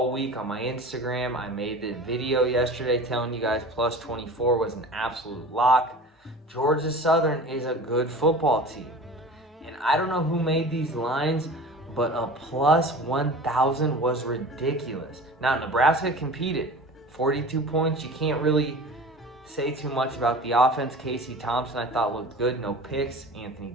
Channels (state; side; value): normal; both; correlation 0.38